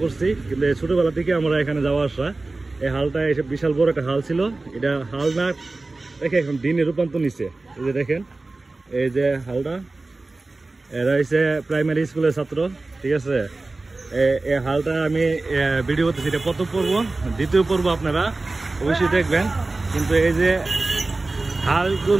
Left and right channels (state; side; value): quieter; left; 3.3 dB